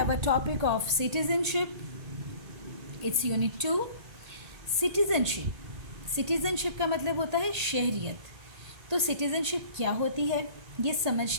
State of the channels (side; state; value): left; late; 1.8 ms